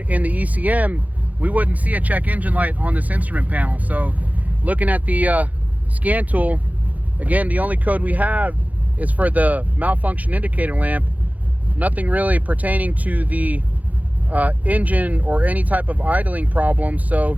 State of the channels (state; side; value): late; left; 0.076 ms